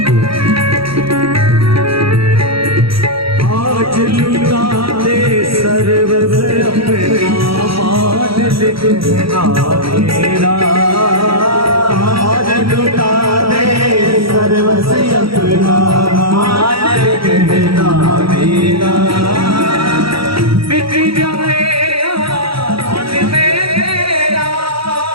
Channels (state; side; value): late; left; 0.75 ms